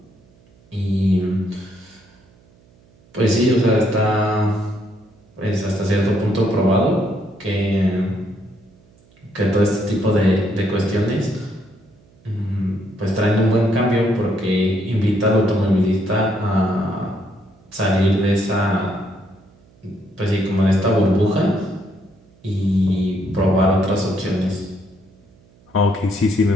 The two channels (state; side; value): noise; right; hum, 30 dB below the sound